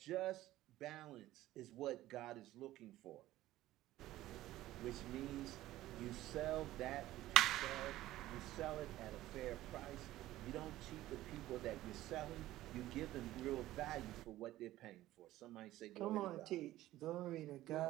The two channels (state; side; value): quieter; left; 15.4 dB